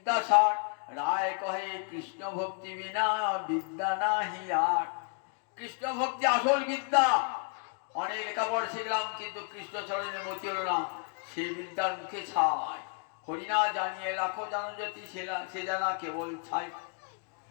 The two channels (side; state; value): right; quieter; 38.2 dB